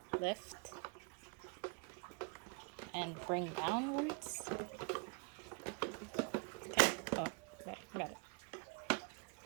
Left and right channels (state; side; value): quieter; left; 32.2 dB